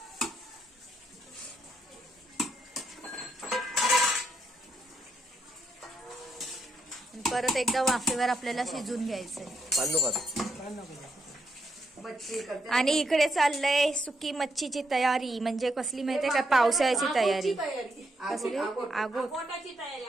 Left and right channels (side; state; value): both; normal; correlation 0.79